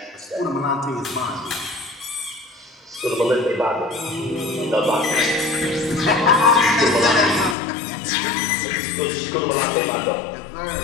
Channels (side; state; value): right; drops out; at 7.6 s